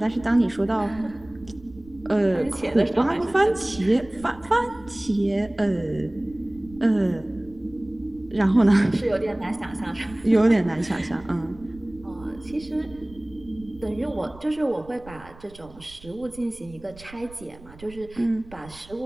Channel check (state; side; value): noise; right; rumble, 20 dB below the sound